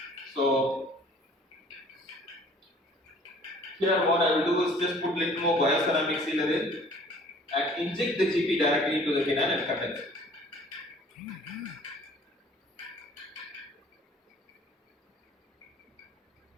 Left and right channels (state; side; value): normal; both; correlation 0.53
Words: So here what I will do is just put little more bioceramic sealer in and inject the GP directly into the canal and condense it.